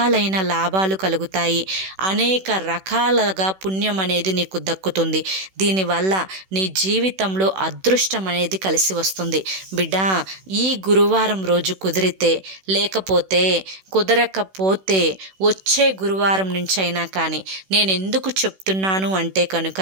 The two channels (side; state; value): left; late; 16 ms